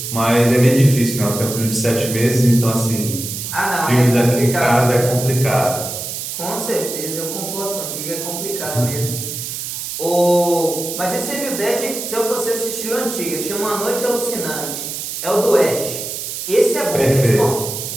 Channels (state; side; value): noise; right; hiss, 6 dB below the sound